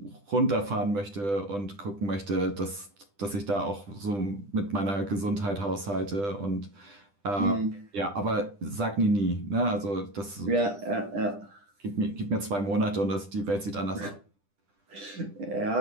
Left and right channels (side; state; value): left; late; 10 ms